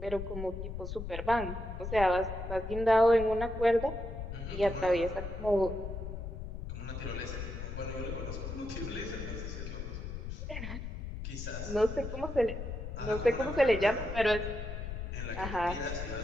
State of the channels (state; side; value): noise; left; rumble, 6 dB below the sound